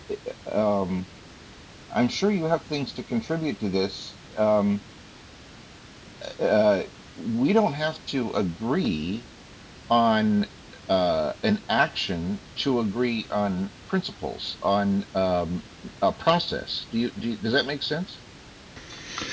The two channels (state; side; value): identical; both; correlation 1.00